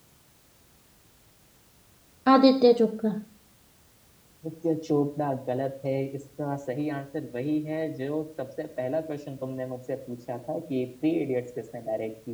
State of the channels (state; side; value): identical; both; correlation 1.00